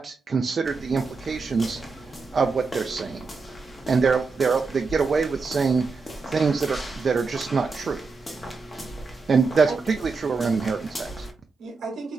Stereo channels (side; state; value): left; quieter; 4.4 dB